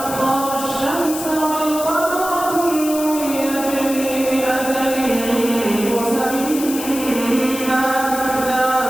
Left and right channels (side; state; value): left; noise; hiss, 8 dB below the sound